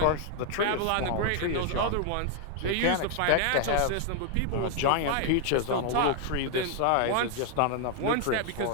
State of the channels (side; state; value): both; different; correlation 0.00